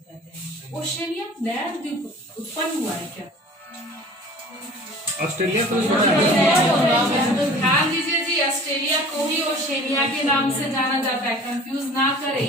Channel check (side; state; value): both; normal; correlation 0.45